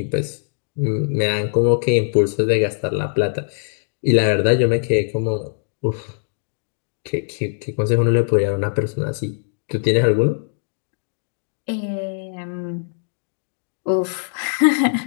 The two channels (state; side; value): silent; right; digital silence